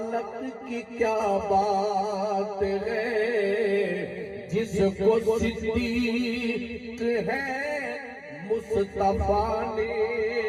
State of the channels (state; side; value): identical; both; correlation 1.00